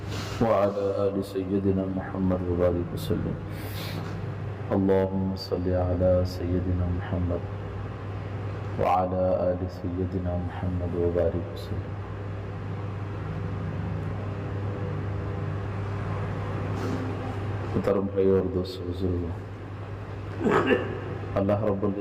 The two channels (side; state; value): both; identical; correlation 1.00